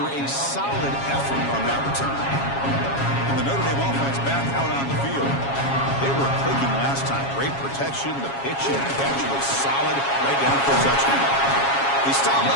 a solid effort on that return. And the Notre Dame offense back out on the field. They were clicking last time. Great protection. The pitch and catch was solid right down for a touchdown. They stop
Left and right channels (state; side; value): late; right; 7.3 ms